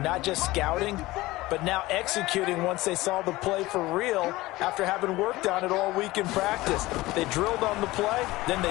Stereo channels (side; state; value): right; quieter; 19.1 dB